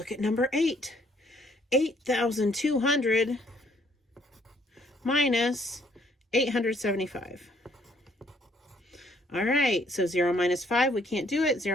at number 8. 8,200 minus 875. All right, so 0 minus 5, we can't do it.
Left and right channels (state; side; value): normal; both; correlation 0.65